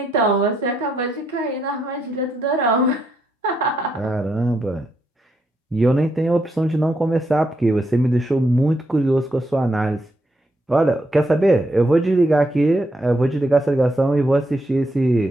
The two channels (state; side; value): normal; both; correlation 0.79